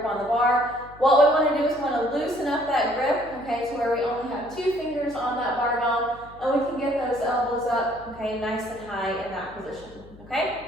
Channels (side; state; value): left; noise; hum, 21 dB below the sound